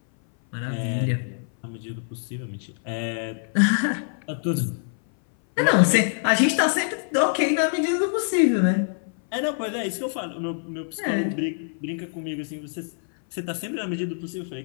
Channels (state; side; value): silent; right; 58 dB below the other